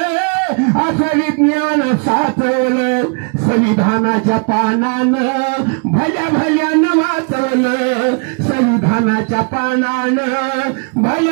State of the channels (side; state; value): left; quieter; 37.3 dB